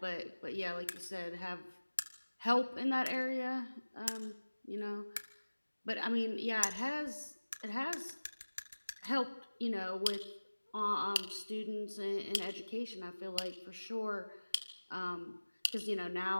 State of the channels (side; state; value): both; inverted; correlation -1.00